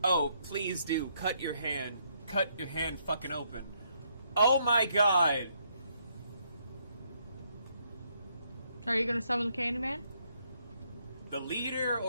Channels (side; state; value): both; inverted; correlation -0.72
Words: Oh, please do. Cut your hand. Cut your hand fucking open. Oh my god! Are you gonna summon the Candyman? The leader